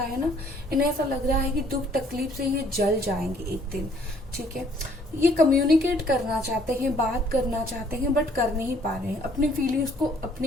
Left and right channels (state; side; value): normal; both; correlation 0.62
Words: है ना, इन्हें ऐसा लग रहा है कि दुख तकलीफ से ये जल जाएंगे एक दिन, ठीक है। ये कम्युनिकेट करना चाहते हैं, बात करना चाहते हैं, बट कर नहीं पा रहे हैं, अपनी फीलिंग्स को